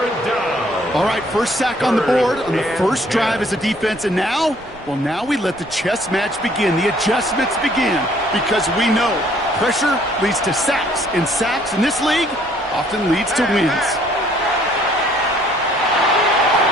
All right, first sack on the board on the first drive as a defense, and now we let the chess match begin, the adjustments begin, because we know pressure leads to sacks, and sacks in this league often leads to wins.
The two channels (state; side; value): noise; right; rumble, 23 dB below the sound